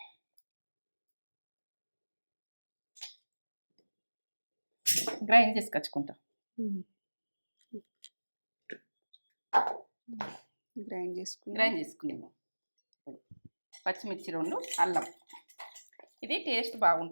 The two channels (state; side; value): inverted; both; correlation -1.00